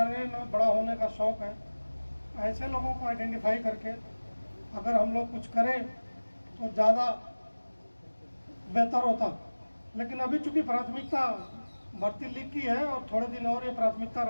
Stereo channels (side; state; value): both; inverted; correlation -1.00